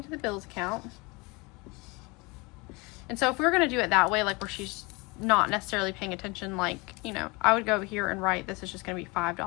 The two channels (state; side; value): quieter; right; 26.5 dB